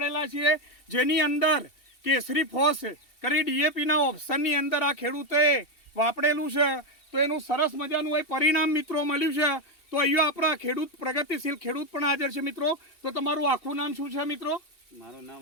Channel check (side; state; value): right; late; 2.8 ms